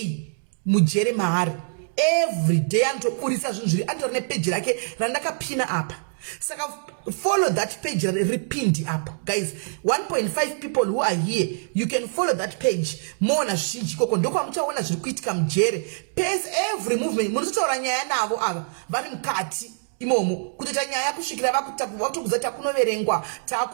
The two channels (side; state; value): left; silent; digital silence